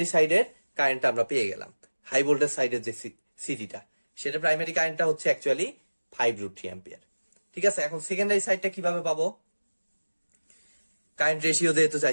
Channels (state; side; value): inverted; both; correlation -1.00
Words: সাইডের কারেন্টটা আমরা পেয়ে গেলাম। হাই ভোল্টেজ সাইডের যে সিটিটা, সেটা প্রাইমারি কারেন্টটা হচ্ছে অ্যাকচুয়ালি 5√3 অ্যাম্পিয়ার। ঠিক আছে, এখন সেকেন্ডারি সাইডটা কিভাবে পাবো? কারেন্ট রেশিও যেহেতু